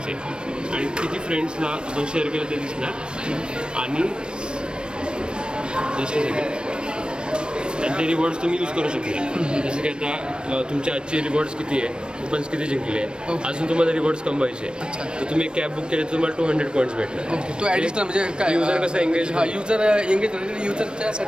आणि किती फ्रेंड्सला आपण शेअर केलं ते दिसणार. आणि ते रिवॉर्ड्स तुम्ही यूज करू शकता. जसं की आता तुमचे आजचे रिवॉर्ड्स किती आहे, कुपन्स किती जिंकले आहे, अजून तुम्हाला रिवॉर्ड्स कमवायचे. तर तुम्ही एक कॅब बुक केली तर तुम्हाला 200 पॉईंट्स भेटणार. ओके. तो ॲडिशनल म्हणजे काय युजर कसं एंगेज.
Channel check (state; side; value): late; left; 0.054 ms